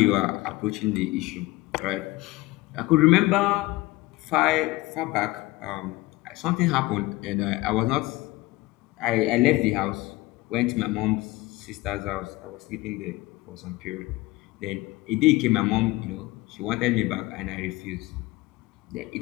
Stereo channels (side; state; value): right; quieter; 19.8 dB